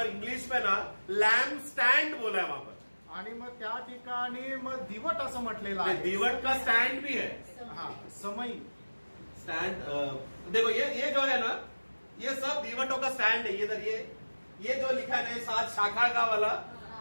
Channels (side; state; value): both; inverted; correlation -1.00